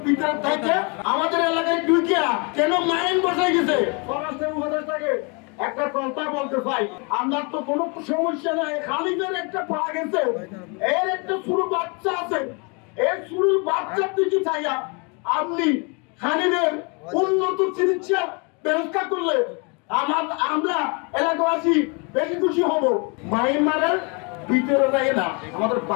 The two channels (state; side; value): quieter; right; 32.8 dB